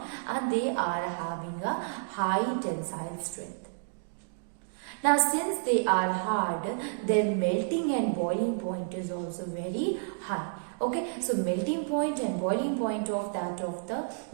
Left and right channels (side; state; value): left; silent; digital silence